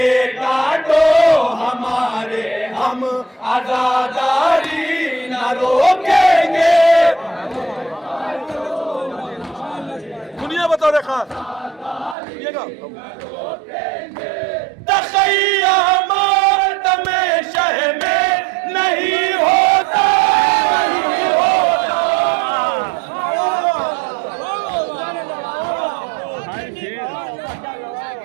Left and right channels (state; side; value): drops out; left; at 12.2 s